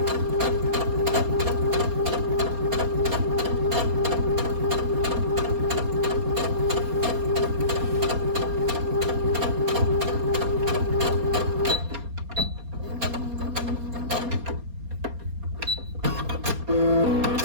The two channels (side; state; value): left; late; 4.3 ms